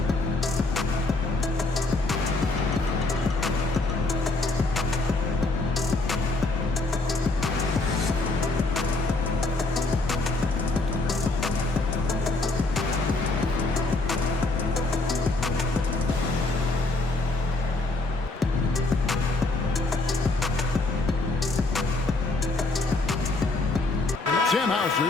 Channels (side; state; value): right; quieter; 3.1 dB